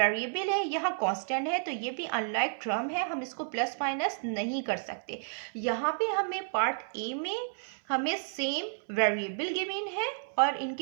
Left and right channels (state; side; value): silent; left; 56 dB below the other